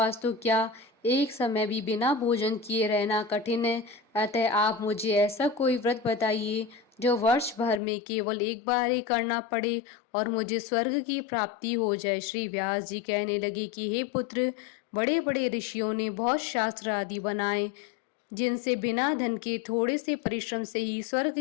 तो क्या, एक समय भी बिना भोजन किए रहना कठिन है। अतः आप मुझे ऐसा कोई व्रत बताइए जो वर्ष भर में केवल एक बार ही करना पड़े और मुझे स्वर्ग की प्राप्ति हो जाए। श्री व्यास जी कहने लगे कि हे पुत्र, बड़े बड़े ऋषियों ने बहुत शास्त्र आदि बनाए, जिनसे बिना धन के थोड़े से परिश्रम से ही स्वर्ग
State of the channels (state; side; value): drops out; right; at 7.8 s